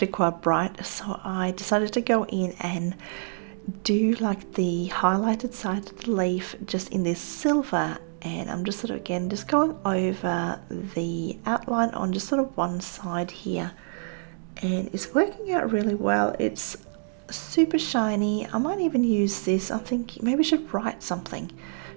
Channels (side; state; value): left; silent; digital silence